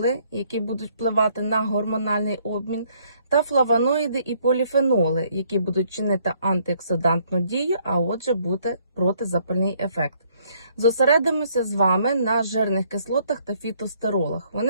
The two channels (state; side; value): inverted; both; correlation -0.66